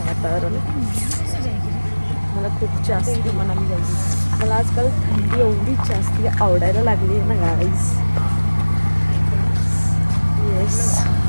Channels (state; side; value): inverted; both; correlation -1.00